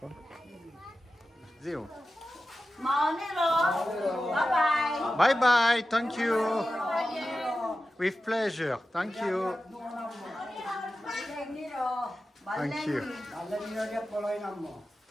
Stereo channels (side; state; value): both; normal; correlation 0.93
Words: Zero. Maoniro. Bye-bye. Bye bye. Thank you. With pleasure. Thank you. Thank you.